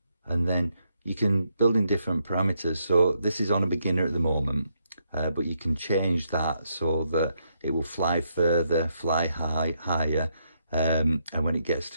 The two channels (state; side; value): inverted; both; correlation -0.77